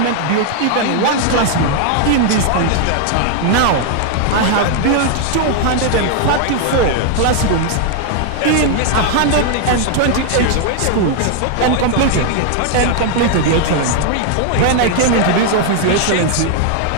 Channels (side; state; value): both; different; correlation 0.00